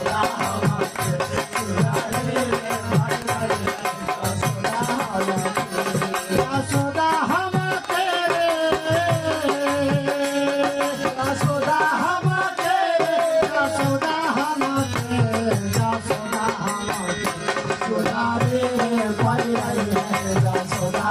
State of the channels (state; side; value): identical; both; correlation 1.00